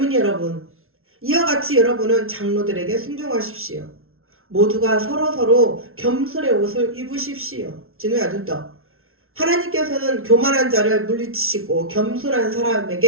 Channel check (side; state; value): left; late; 0.62 ms